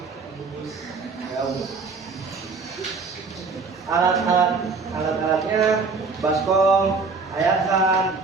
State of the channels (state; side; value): quieter; left; 4.5 dB